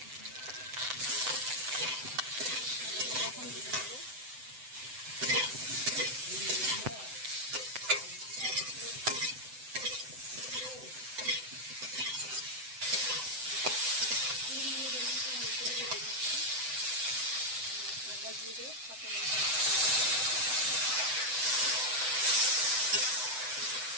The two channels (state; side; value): late; left; 7.9 ms